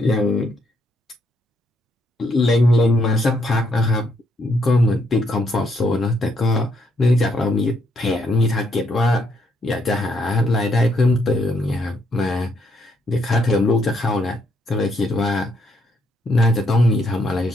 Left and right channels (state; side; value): normal; both; correlation 0.74